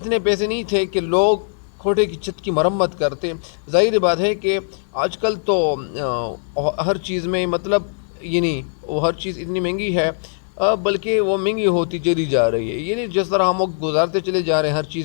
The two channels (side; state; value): right; silent; digital silence